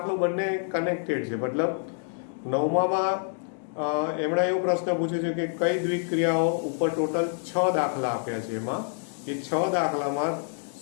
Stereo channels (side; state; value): right; silent; 60 dB below the other